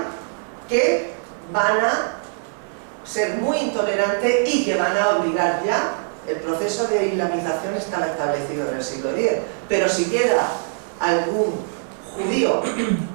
que van a ser muy intolerantes y que van a obligar ya, el proceso de islamización estaba establecido en el siglo X, pero si queda algún judío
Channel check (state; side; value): silent; left; digital silence